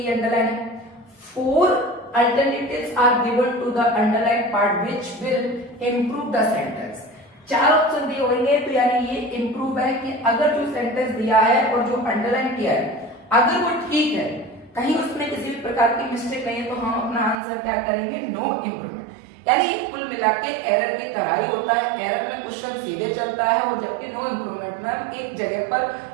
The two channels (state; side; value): drops out; left; at 17.4 s